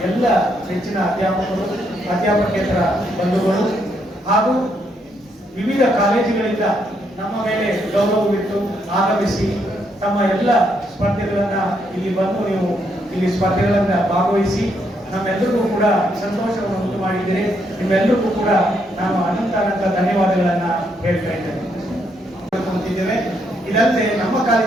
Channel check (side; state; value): both; normal; correlation 0.75